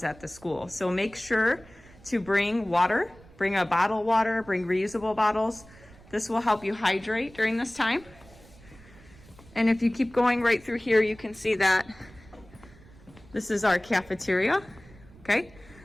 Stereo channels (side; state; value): right; noise; rumble, 23 dB below the sound